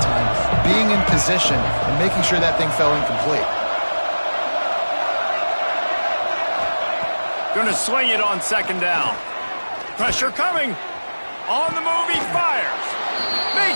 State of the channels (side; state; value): both; inverted; correlation -1.00